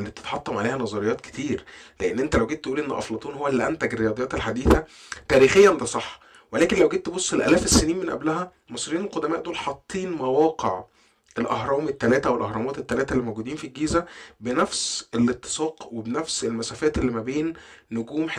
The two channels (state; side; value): identical; both; correlation 1.00